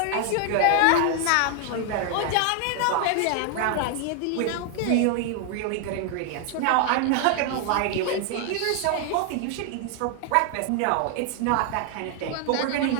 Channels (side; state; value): both; different; correlation 0.00